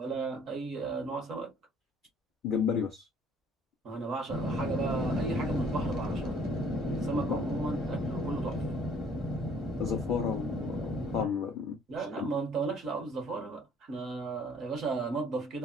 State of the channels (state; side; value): normal; both; correlation 0.58